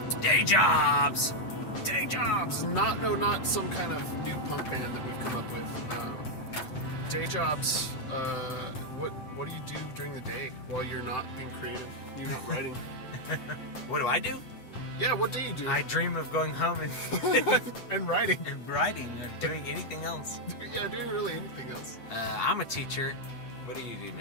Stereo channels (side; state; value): right; late; 7.8 ms